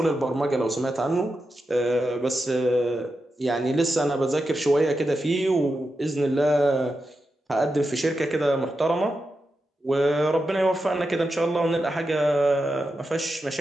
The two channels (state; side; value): normal; both; correlation 0.89